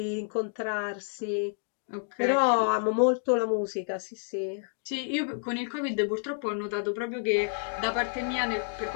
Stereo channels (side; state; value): right; silent; digital silence